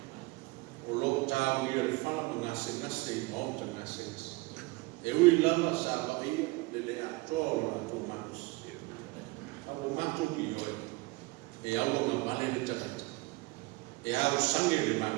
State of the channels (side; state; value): left; quieter; 23.5 dB